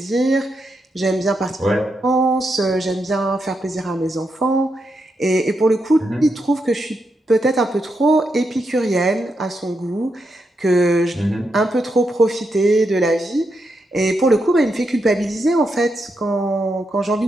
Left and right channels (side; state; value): both; normal; correlation 0.83